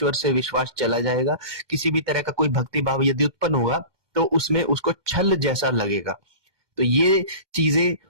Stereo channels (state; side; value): late; left; 1.2 ms